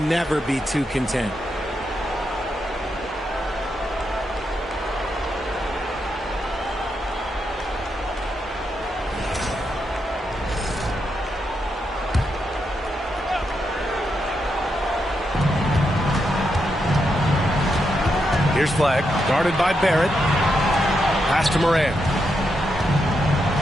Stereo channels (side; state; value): both; normal; correlation 0.83